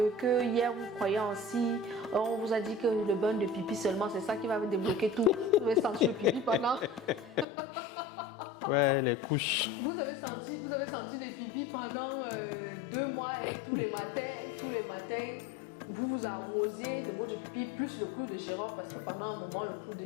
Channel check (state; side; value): drops out; right; at 7.5 s